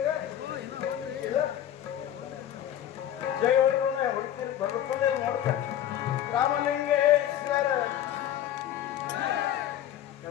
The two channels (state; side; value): quieter; right; 11.2 dB